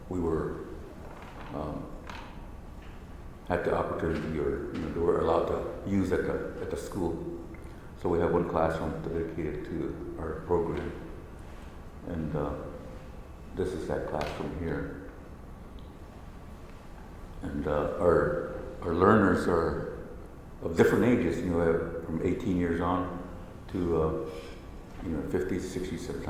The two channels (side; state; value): both; identical; correlation 1.00